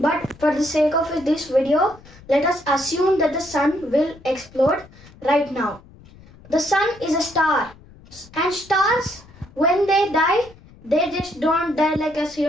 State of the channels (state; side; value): noise; left; rumble, 23 dB below the sound